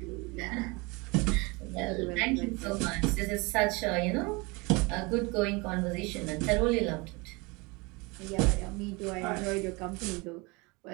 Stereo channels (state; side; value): quieter; left; 26.7 dB